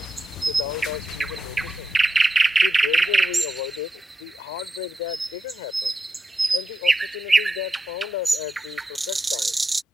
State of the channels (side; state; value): both; normal; correlation 0.87